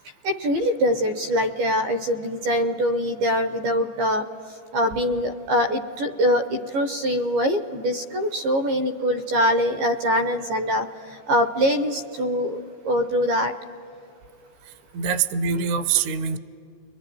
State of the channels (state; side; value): late; left; 15 ms